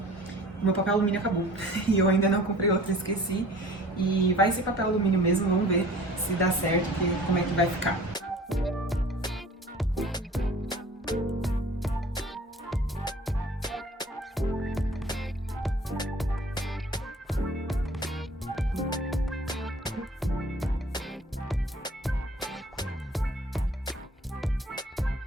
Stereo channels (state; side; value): normal; both; correlation 0.47